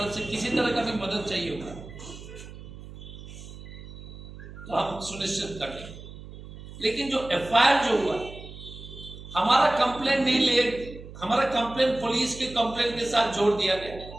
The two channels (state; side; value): noise; right; hum, 14 dB below the sound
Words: से किसी तरह का भी मदद चाहिए होगा तो हम सुनिश्चित कर लेंगे। लेकिन जो एफआईआर जो हुआ, हमारा कंप्लेंट नहीं ले, हमारा कंप्लेंट पुलिस के कंप्लेंट के साथ जोड़ दिया गया।